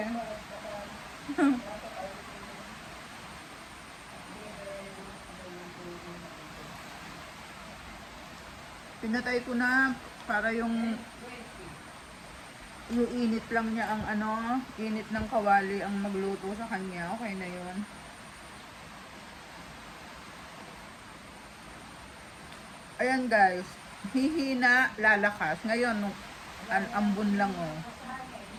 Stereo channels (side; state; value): both; identical; correlation 1.00